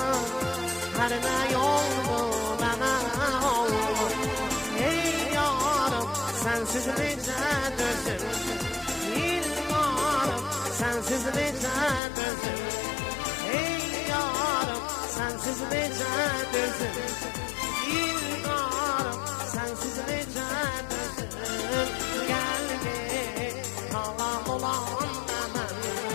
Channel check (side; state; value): right; drops out; at 12.0 s